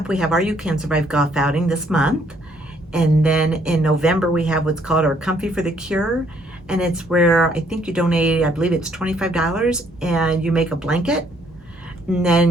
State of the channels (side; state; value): both; normal; correlation 0.66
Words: we have our You Can Survive golf outing this month. And then in November, we have what's called our Comfy for the Cure. And it's where I think you donate, I believe it's $25, and you make a blanket. And